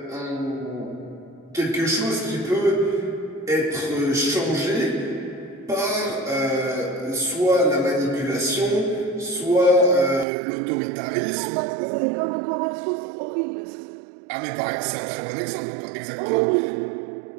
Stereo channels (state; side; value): drops out; left; at 10.2 s